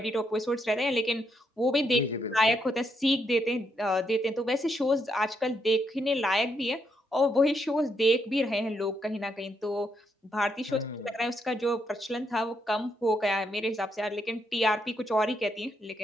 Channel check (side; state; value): both; normal; correlation 0.78